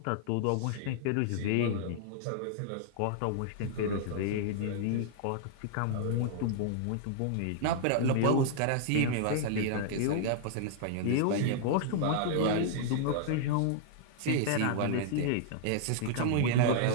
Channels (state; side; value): different; both; correlation -0.01